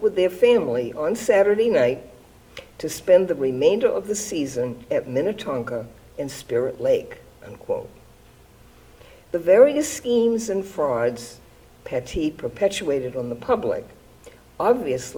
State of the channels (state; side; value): identical; both; correlation 1.00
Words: with their family on Saturday night to spend the remainder of the season at Minnetonka and Spirit Lake," unquote. The various schemes and frauds Pattee perpetuated on the public